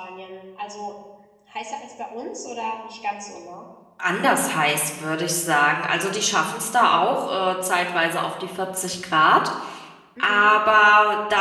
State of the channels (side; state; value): both; identical; correlation 1.00